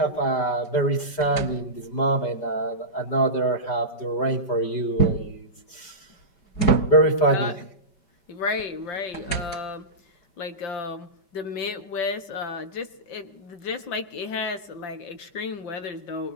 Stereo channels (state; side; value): late; right; 5.2 ms